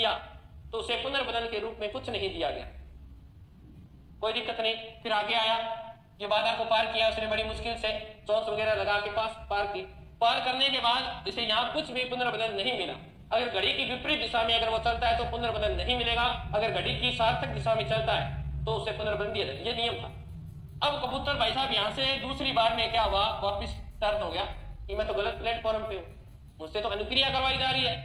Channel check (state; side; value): identical; both; correlation 1.00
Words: तो उसे पुनर्बलन के रूप में कुछ नहीं दिया गया, कोई दिक्कत नहीं। फिर आगे आया, ये बाधा को पार किया उसने बड़ी मुश्किल से, चोंच वगैरह लगा के पास पार की। पार करने के बाद इसे यहाँ कुछ भी पुनर्बलन नहीं मिला। अगर घड़ी की विपरीत दिशा में अगर वो चलता है तो पुनर्बलन नहीं मिलेगा, अगर घड़ी की सार्थक दिशा में चलता है तो उसे पुनर्बलन दिया जाएगा। ये नियम था। अब कबूतर भाई साहब यहाँ से दूसरी बार में क्या हुआ? वापिस टर्न हो गया कि मैं तो गलत प्लेटफॉर्म पे हूँ, मुझसे तो अनुक्रिया करवाई जा रही